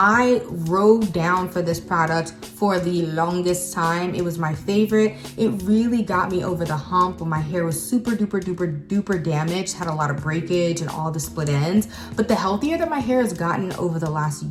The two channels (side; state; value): both; identical; correlation 1.00